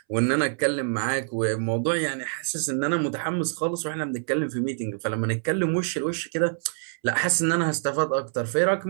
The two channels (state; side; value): silent; left; 61 dB below the other